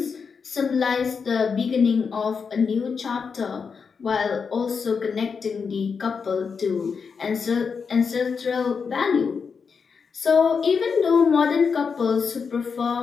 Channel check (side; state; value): right; quieter; 5.7 dB